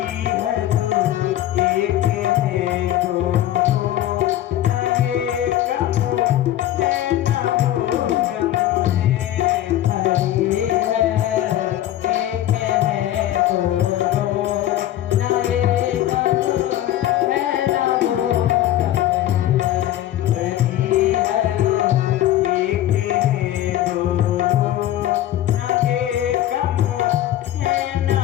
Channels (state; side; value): quieter; right; 13.1 dB